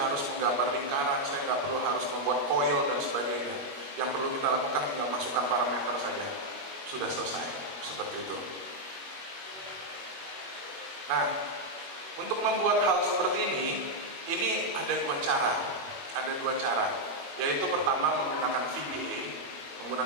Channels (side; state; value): left; late; 21 ms